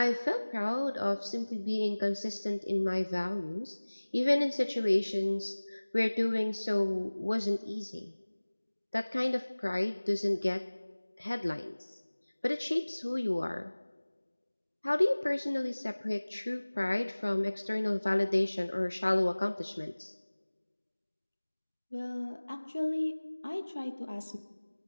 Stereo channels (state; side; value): inverted; both; correlation -1.00